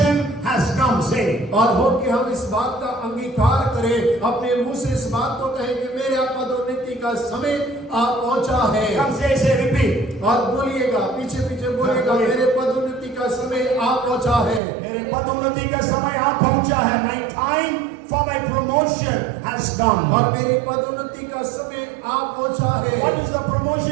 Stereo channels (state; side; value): drops out; left; at 14.6 s